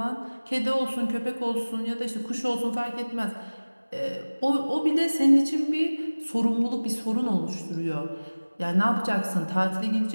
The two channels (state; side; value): inverted; both; correlation -1.00